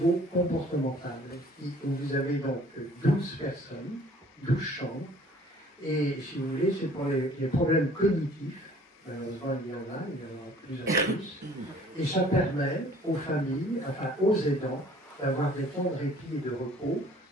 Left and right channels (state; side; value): normal; both; correlation 0.54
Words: où vous avez donc 12 personnes, 12 chambres, et si vous voulez, c'est pour les problèmes cognitifs. Malheureusement, il y en a plus en plus. Et ça permet aux familles, enfin aux aidants, d'avoir des temps de répit et de repos,